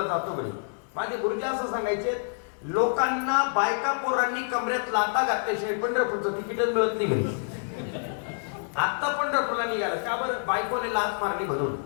जातो म्हणे. माझे गुरुजी असं सांगायचे, लोकांना बायका पोरांनी कमऱ्यात लाता घातल्याशिवाय पंढरपूरचं तिकीटच मिळत नाही म्हणे. आत्ता पंढरपूरला निघाला का बरं? बायकोने लात मारली म्हणून.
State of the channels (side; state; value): right; silent; 60 dB below the other